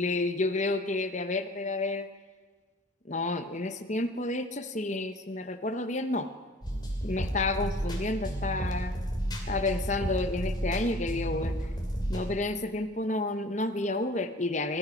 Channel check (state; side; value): normal; both; correlation 0.47